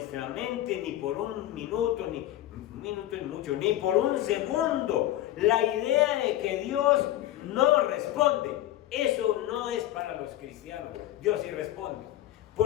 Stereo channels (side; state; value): right; quieter; 13.9 dB